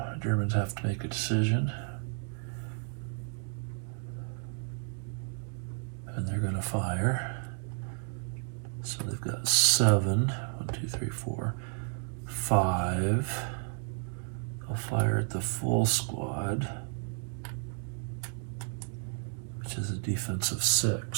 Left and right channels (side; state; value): left; silent; 56 dB below the other